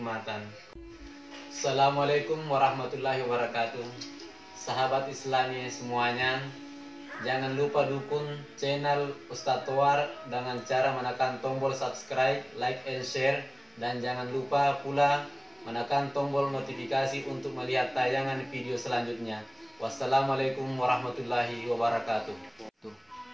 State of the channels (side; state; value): both; identical; correlation 1.00